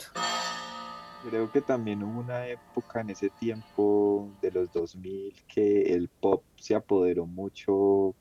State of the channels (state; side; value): identical; both; correlation 1.00